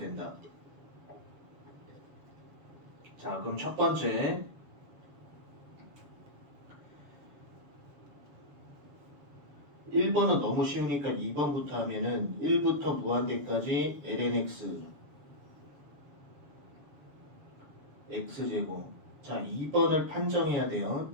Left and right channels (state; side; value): late; left; 7.0 ms